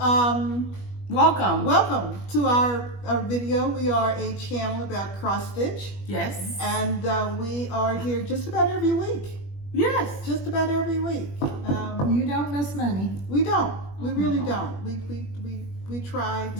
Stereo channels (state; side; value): late; right; 21 ms